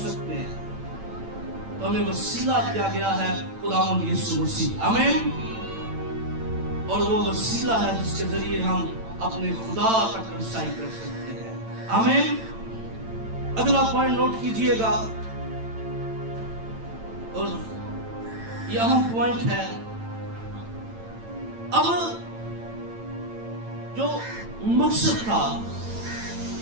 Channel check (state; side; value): late; left; 8.9 ms